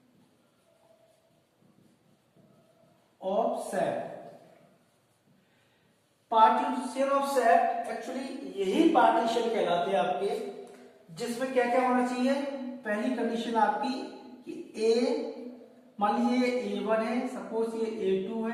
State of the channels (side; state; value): both; identical; correlation 1.00